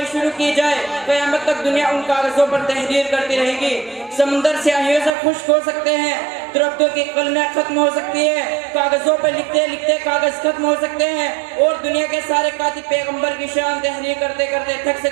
شروع کی جائے، قیامت تک دنیا ان کاغذوں پر تحریر کرتی رہے گی۔ سمندر سیاہیوں سے خشک ہو سکتے ہیں، درختوں کی قلمیں ختم ہو سکتی ہے، کاغذوں پر لکھتے لکھتے کاغذ ختم ہو سکتے ہیں اور دنیا کے سارے کاتب پیغمبر کی شان تحریر کرتے کرتے تھک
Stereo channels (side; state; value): left; drops out; at 5.1 s